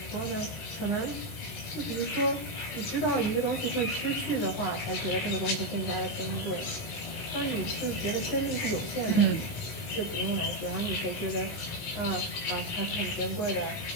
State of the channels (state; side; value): late; right; 19 ms